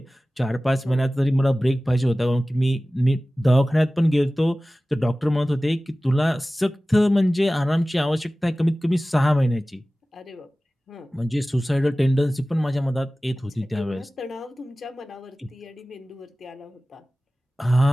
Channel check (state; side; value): normal; both; correlation 0.97